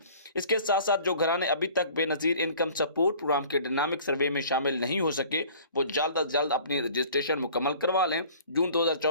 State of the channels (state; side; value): inverted; both; correlation -0.49